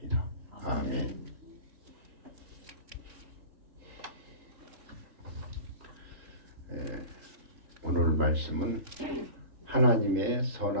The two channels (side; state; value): left; late; 3.8 ms